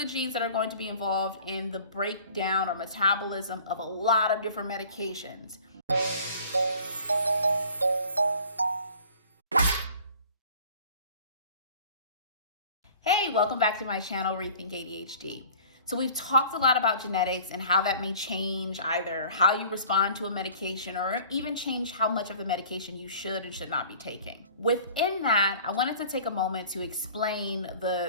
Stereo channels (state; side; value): inverted; both; correlation -0.48